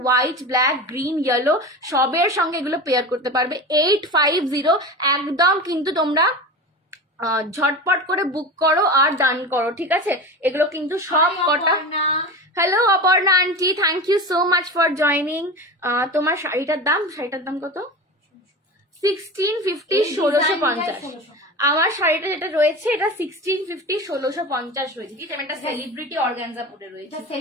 হোয়াইট, ব্ল্যাক, গ্রিন, ইয়েলো সবের সঙ্গে এগুলো পেয়ার করতে পারবে। 850 একদম কিন্তু তোমরা ঝটপট করে বুক করো আর ডান করো। ঠিক আছে, এগুলো কিন্তু সব কটা। Hello Aparna aunty, thank you so much for joining. তোমার শাড়িটার দাম কত? 1650, 1650। আমার শাড়িটা যেটা রয়েছে এটা 1650, 1650 রয়েছে। ঠিক আছে, এটা সেলিব্রিটি অর্গানজা পরে রয়েছে,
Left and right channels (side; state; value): both; normal; correlation 0.29